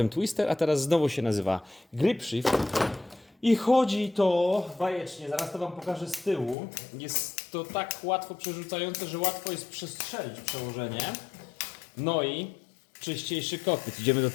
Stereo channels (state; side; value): drops out; right; at 6.6 s